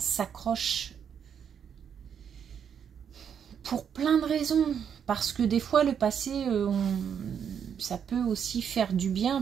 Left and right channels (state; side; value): quieter; left; 7.9 dB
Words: pour plein de raisons. Parce que des fois, le passé, ça peut aussi faire du bien